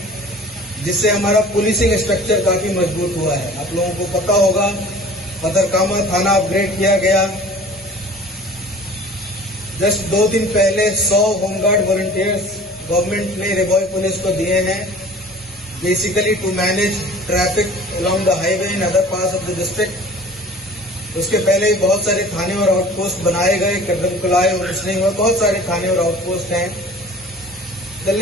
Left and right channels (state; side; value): normal; both; correlation 0.45